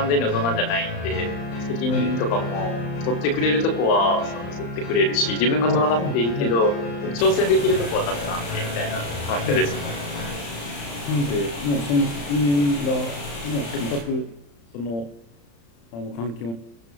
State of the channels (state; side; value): late; right; 35 ms